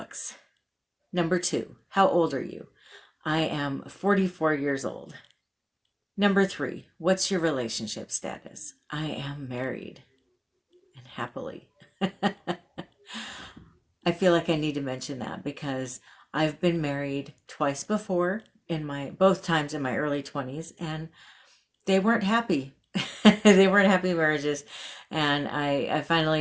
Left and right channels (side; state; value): both; identical; correlation 1.00